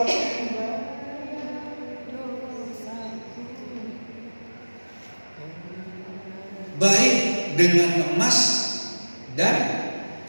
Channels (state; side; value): inverted; both; correlation -1.00